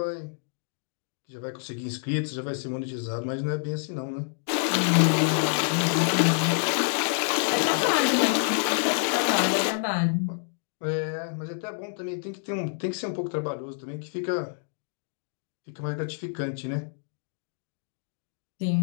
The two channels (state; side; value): silent; right; digital silence